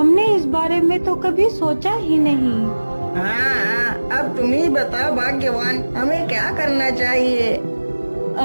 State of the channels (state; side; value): inverted; both; correlation -1.00